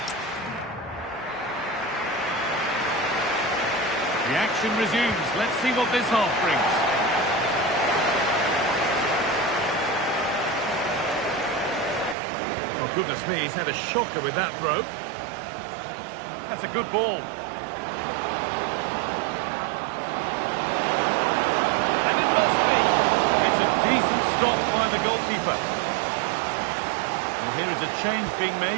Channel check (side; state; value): left; drops out; at 12.2 s